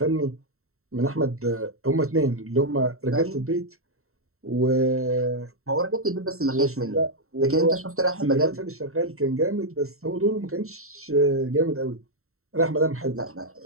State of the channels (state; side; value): late; left; 0.63 ms